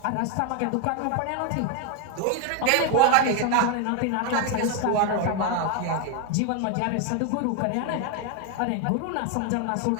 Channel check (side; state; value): both; different; correlation 0.01